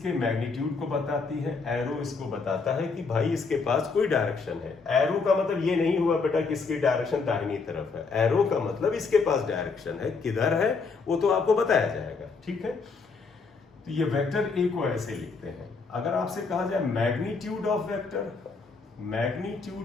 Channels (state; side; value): quieter; right; 4.6 dB